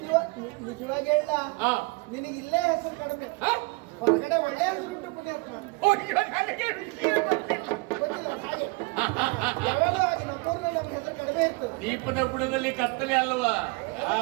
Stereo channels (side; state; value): left; quieter; 26.8 dB